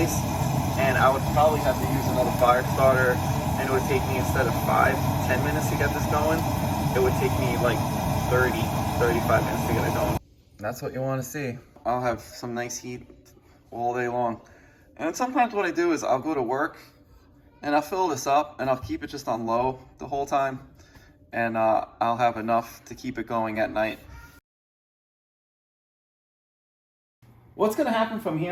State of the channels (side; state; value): both; identical; correlation 1.00